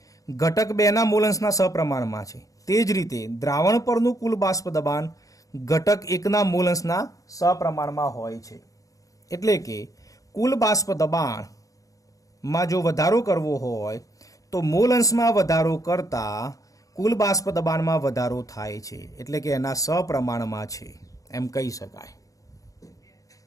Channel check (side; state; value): right; late; 0.16 ms